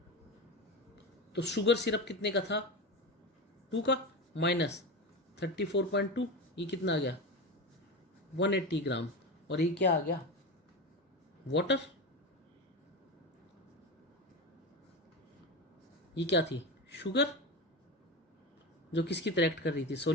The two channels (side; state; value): both; normal; correlation 0.21